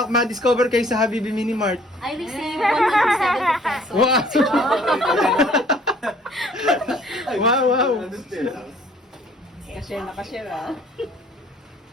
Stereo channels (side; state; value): both; normal; correlation 0.57